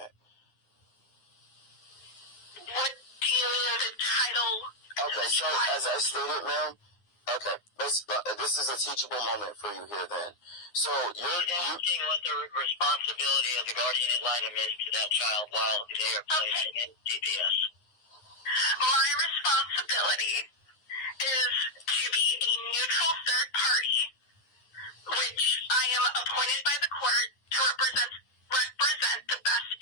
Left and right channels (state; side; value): late; right; 9.7 ms